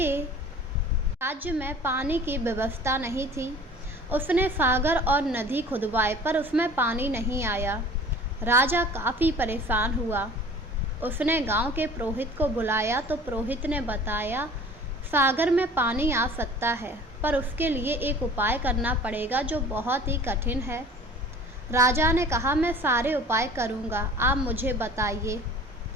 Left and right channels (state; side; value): normal; both; correlation 0.45